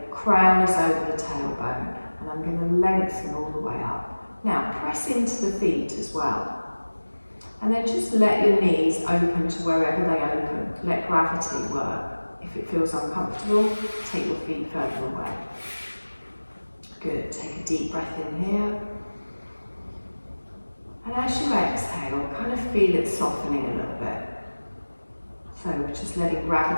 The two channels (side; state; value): both; inverted; correlation -1.00